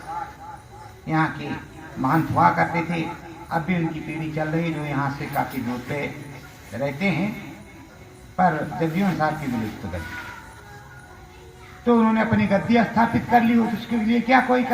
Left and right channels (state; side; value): identical; both; correlation 1.00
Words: यहाँ के महंत हुआ करते थे। अब भी उनकी पीढ़ी चल रही, जो यहाँ से काफी दूर पे रहते हैं, पर जगजीवन साहब की विलुप्त गद्दी, तो उन्होंने अपनी गद्दी स्थापित कर ली हो, तो उसके लिए क्या कोई